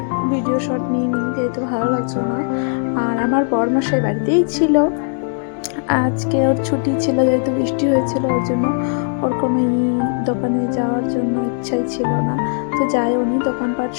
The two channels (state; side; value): silent; right; digital silence